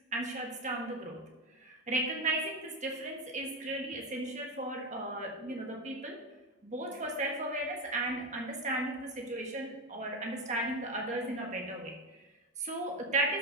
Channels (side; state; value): both; normal; correlation 0.13